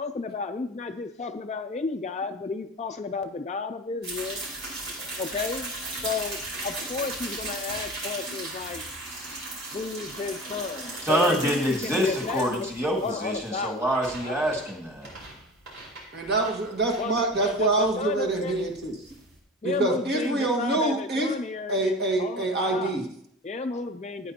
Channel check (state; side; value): normal; both; correlation 0.35